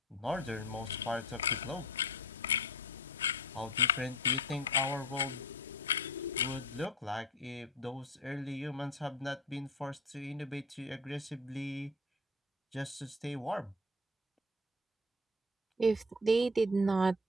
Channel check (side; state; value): both; normal; correlation 0.37